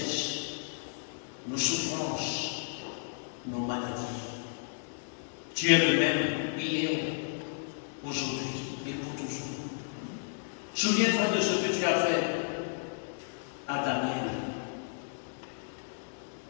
nos souffrances, nos maladies. Tu es le même hier, aujourd'hui et pour toujours. Souviens-toi de ce que tu as fait à Daniel.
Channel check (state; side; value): silent; right; digital silence